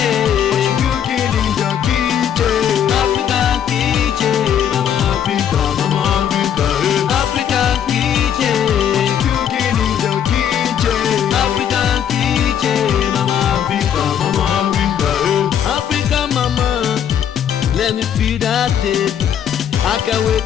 what you cooking in your kitchen? African kitchen, I'm Africa, African kitchen, what you cooking in your kitchen? African kitchen, I'm Africa, Africa mama, let me feel that taste. I can't wait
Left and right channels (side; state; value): right; quieter; 9.1 dB